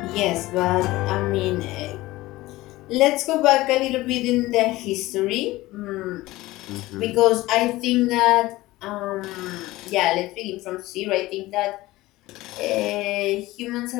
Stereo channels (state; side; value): quieter; right; 18.3 dB